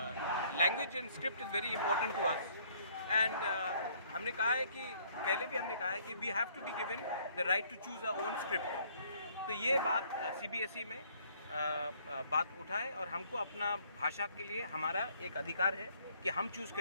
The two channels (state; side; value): inverted; both; correlation -0.62